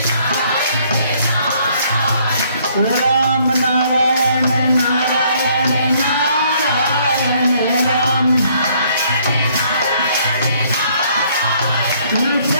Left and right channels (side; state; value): both; inverted; correlation -0.64